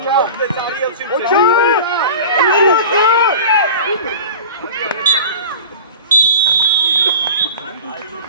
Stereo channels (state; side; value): inverted; both; correlation -0.35